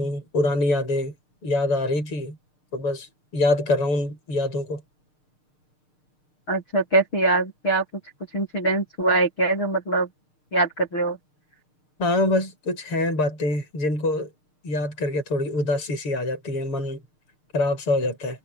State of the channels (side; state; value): right; late; 6.6 ms